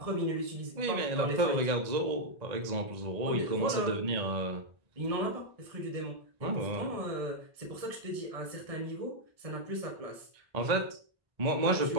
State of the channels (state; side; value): late; left; 1.9 ms